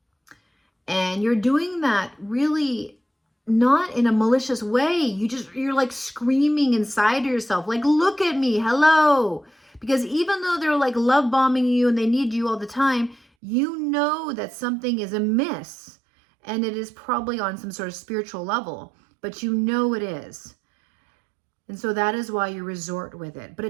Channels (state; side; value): drops out; left; at 13.2 s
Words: And you're doing that really not in a malicious way. You're like screaming inside of yourself, like, look at me, hello. Because even though they're like love bombing you and they need you all the time, you know that something is amiss. And it is probably on some sort of spiritual level, but you know it is. And so that is why you resort with it. But